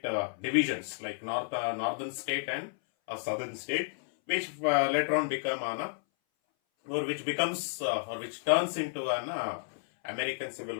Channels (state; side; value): silent; right; 57 dB below the other